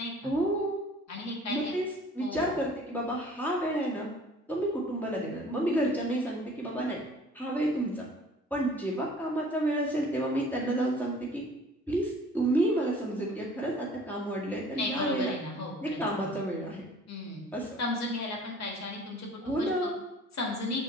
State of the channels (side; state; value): both; normal; correlation 0.51